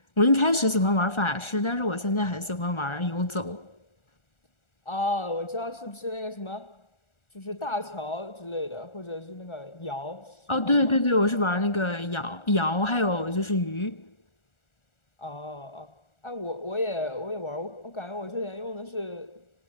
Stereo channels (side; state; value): right; late; 1.4 ms